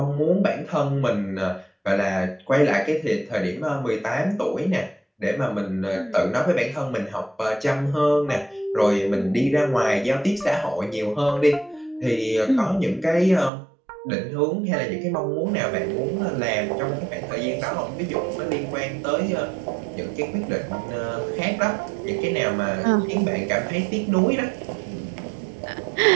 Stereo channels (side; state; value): left; drops out; at 13.5 s